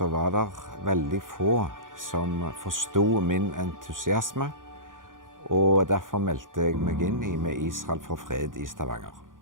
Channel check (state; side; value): late; left; 0.89 ms